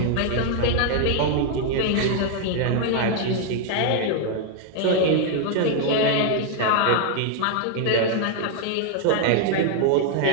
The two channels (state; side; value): different; both; correlation 0.00